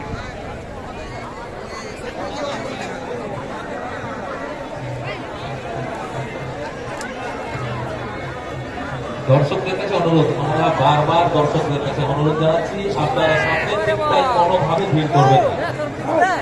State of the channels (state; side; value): identical; both; correlation 1.00